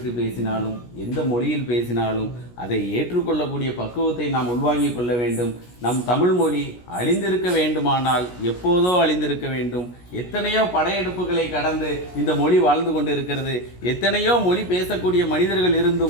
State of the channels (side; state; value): right; late; 17 ms